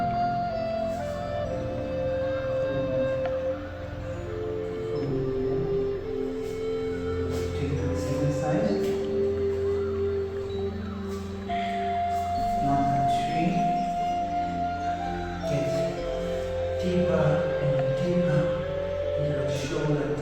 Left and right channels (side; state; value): both; identical; correlation 1.00